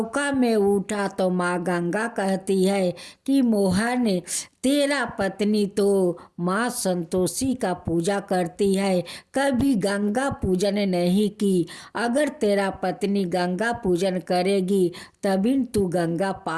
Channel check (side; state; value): both; identical; correlation 1.00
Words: में उठा तो माँ गंगा कहती है कि मोहन, तेरा पत्नी तो माँ संतोषी का पूजा करती है, कभी गंगा पूजन नहीं की। अगर तेरा पत्नी गंगा पूजन करेगी तभी तू गंगा